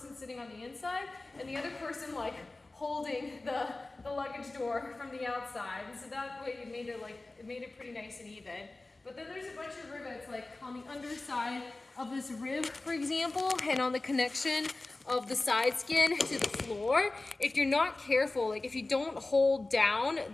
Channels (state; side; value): quieter; right; 3.1 dB